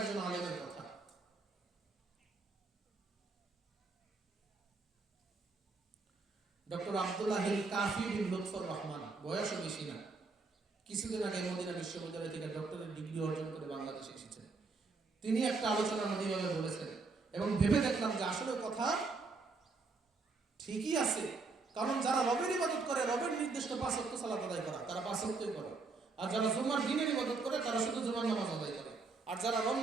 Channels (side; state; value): left; quieter; 4.1 dB